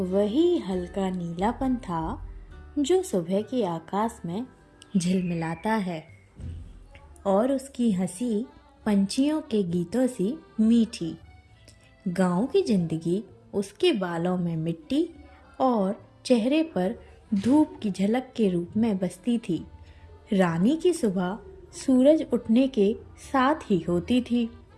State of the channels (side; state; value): both; identical; correlation 1.00